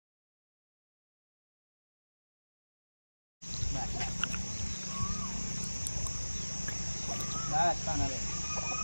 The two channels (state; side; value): inverted; both; correlation -1.00